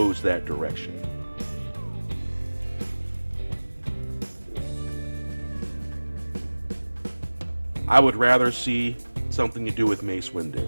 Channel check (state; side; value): inverted; both; correlation -1.00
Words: that direction. I would rather see something to do with Mace